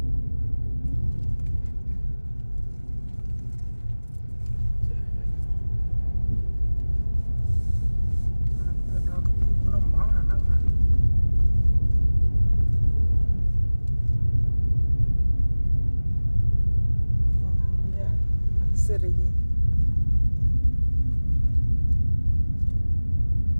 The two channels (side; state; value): both; inverted; correlation -1.00